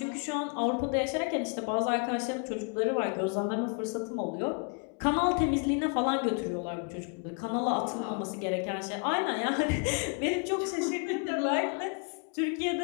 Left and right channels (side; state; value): right; quieter; 37.9 dB